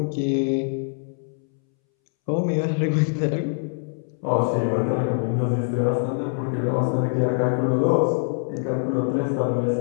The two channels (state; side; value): silent; right; 63 dB below the other